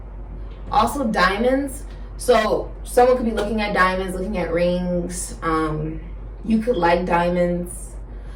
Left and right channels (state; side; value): identical; both; correlation 1.00